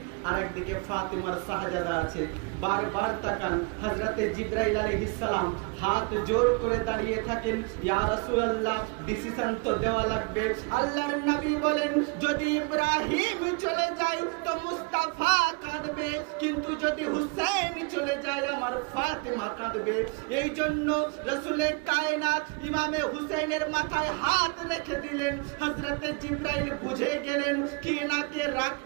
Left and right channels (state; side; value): quieter; left; 31.7 dB